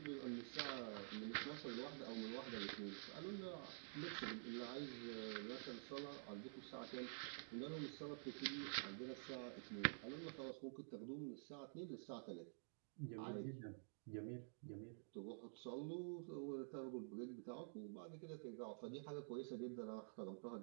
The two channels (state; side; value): silent; left; digital silence